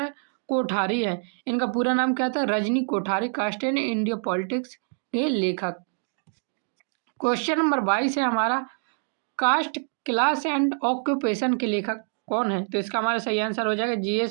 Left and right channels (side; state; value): left; silent; 61 dB below the other